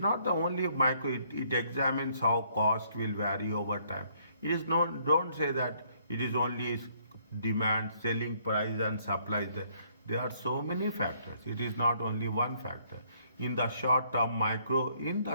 the only micro. It examines how cost will vary over time. It is not. Don't say that it is only demand, selling price, and supply. There are so many factors. It is not only one factor. In the short term, micro. In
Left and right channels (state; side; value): inverted; both; correlation -0.67